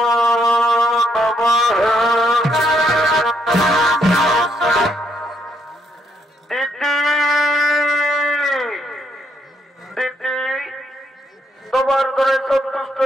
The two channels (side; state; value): both; normal; correlation 0.74